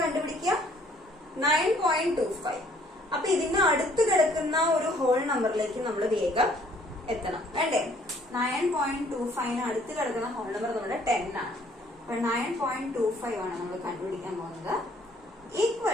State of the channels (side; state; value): both; normal; correlation 0.61